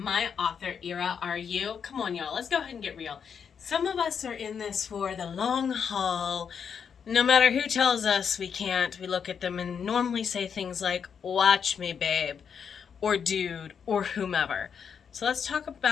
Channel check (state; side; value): quieter; right; 7.0 dB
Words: my author era, are you? Come on, y'all, let's go ahead and get real. Some of us are in this for the long haul. No matter who tells us we can't, we look at them and normally say things like, watch me, babe, or dude, or whomever. So let's talk